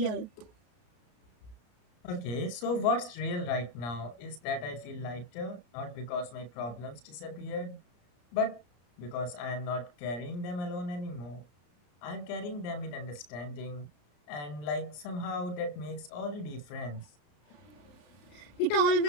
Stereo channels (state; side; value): late; right; 33 ms